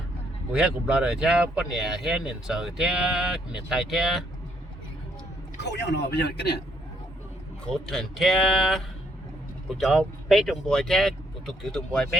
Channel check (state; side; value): normal; both; correlation 0.70